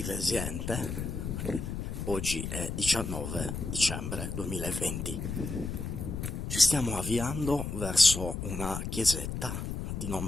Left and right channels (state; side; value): noise; left; rumble, 4 dB below the sound